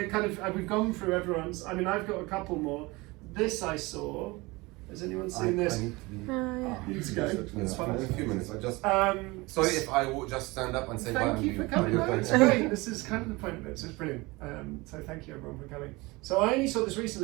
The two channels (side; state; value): left; quieter; 23.3 dB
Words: kind of we've gone through everyone's. I mean, I've got a couple more. This I saw. Has anyone seen this? Need to go. It's fine. In a few minutes. I just. Sorry if I would just stand up and say bye. Thank you for coming. No, it's great. This is kind of the point of it, so it's brilliant. So thank you everyone for coming. So I only saw this